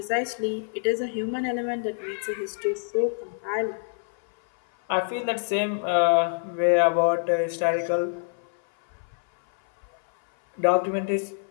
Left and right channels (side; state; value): right; silent; 57 dB below the other